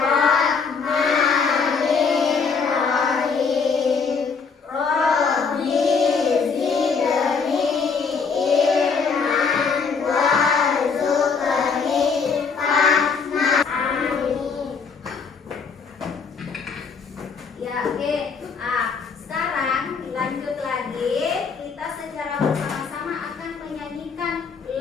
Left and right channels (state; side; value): quieter; right; 5.4 dB